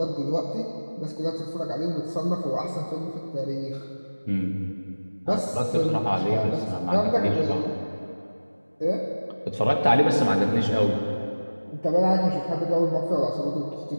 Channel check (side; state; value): both; inverted; correlation -1.00